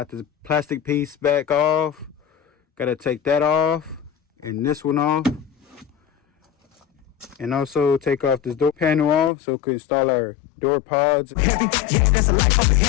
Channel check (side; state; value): right; drops out; at 9.3 s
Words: the plastic piece back off, gotta take that off, and this one off. And also take off this door panel off so we can install our door pods. Heavy, yeah, that's a life up in